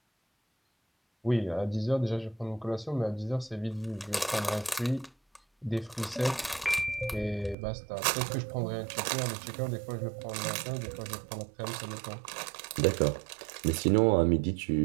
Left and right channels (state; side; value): drops out; left; at 7.6 s